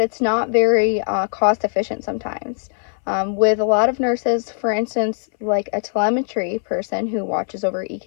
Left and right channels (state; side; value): silent; right; 61 dB below the other